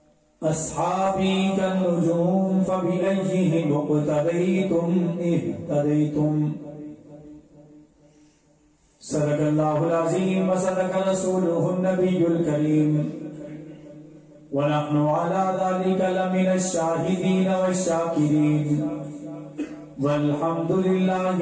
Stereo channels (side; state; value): both; identical; correlation 1.00